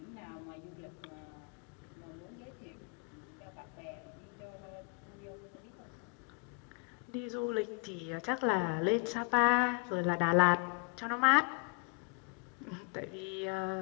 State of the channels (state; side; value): quieter; right; 32.2 dB